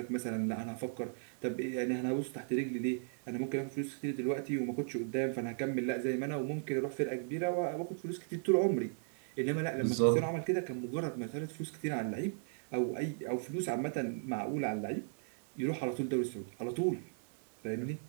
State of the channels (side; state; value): left; silent; digital silence